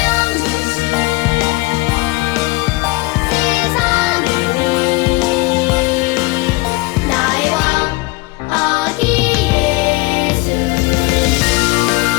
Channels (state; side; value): quieter; right; 23.6 dB